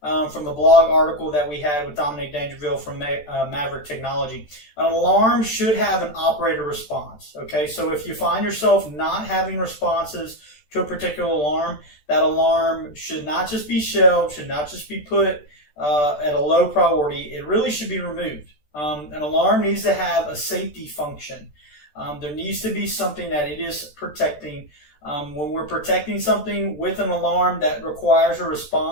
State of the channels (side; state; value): right; late; 14 ms